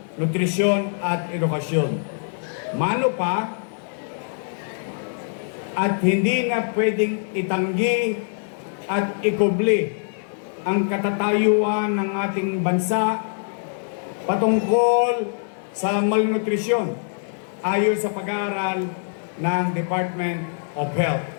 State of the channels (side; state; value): right; silent; digital silence